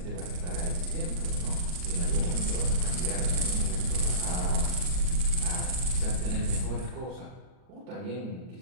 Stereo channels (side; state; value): left; late; 39 ms